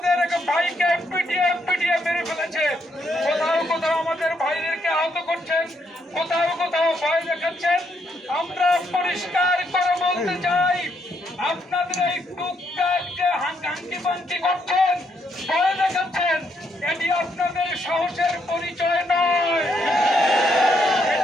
এক ভাইকে পিটিয়ে মেরে ফেলেছে। কোথাও কোথাও আমাদের ভাইদেরকে আহত করছেন, কোথাও কোথাও ভয় দেখাচ্ছেন। আমরা পরিষ্কার করে বলতে চাই, আপনাদের এই টুকটাক যে হাঙ্কি পাঙ্কি করছেন, ভয় দেখাচ্ছেন, এটি আপনাদের সাহসের পরিচয় নয়।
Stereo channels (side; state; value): both; normal; correlation 0.75